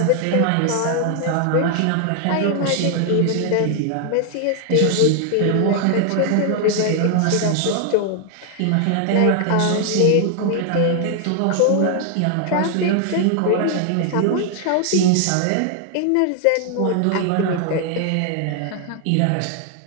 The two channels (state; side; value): different; both; correlation 0.00